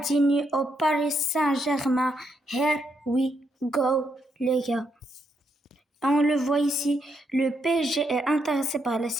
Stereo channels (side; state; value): both; normal; correlation 0.78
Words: au Paris Saint-Germain. Here we go, les gars. On le voit ici, le PSG est intéressé par la